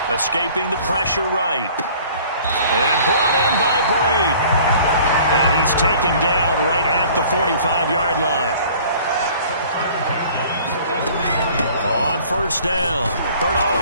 Escaping the pressure right. And brought in by Brady. And he's taken down right at the 45-yard line. On 1st down,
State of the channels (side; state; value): both; inverted; correlation -0.51